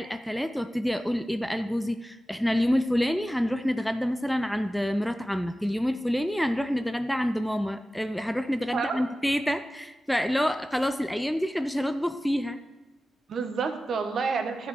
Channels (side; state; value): both; normal; correlation 0.95